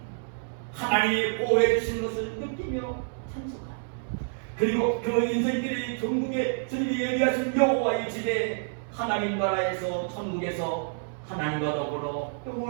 하나님이 보호해 주시는 것을 느끼며 찬송하라. 그리고 그 인생길이 전국에 주님이 예비하신 여호와의 집에 하나님 나라에서 천국에서 하나님과 더불어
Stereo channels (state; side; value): silent; left; digital silence